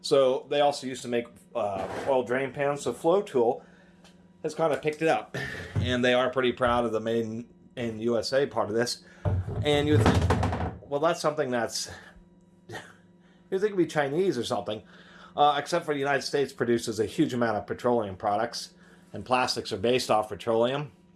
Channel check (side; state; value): both; identical; correlation 1.00